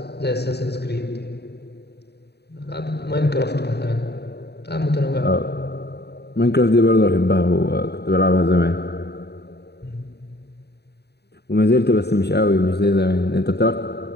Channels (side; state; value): right; late; 0.48 ms